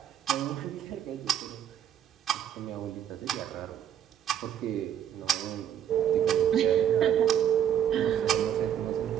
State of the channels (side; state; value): left; quieter; 9.8 dB